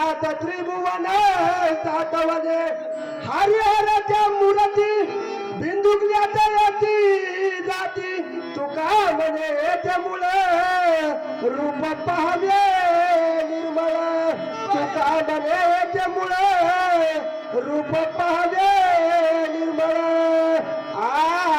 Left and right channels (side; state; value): both; identical; correlation 1.00